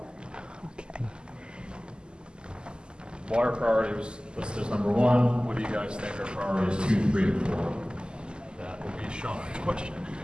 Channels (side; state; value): left; late; 0.048 ms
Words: Okay. Water priority was listed as number 1. What do you guys think are priorities 2, 3, and 4? That will be Shawn's question.